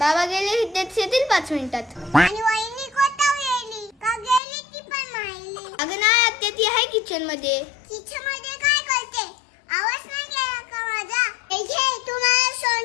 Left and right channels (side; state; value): right; drops out; at 4.4 s